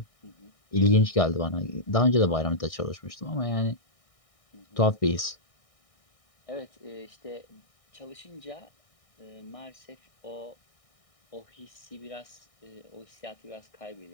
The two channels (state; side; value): late; right; 1.6 ms